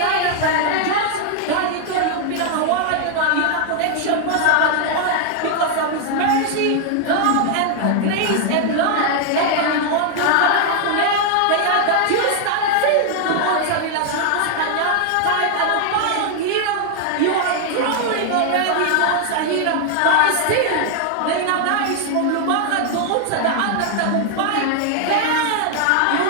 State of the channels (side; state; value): both; different; correlation 0.00